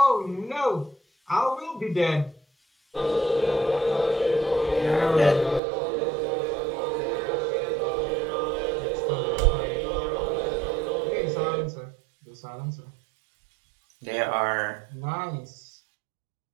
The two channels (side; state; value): left; drops out; at 5.6 s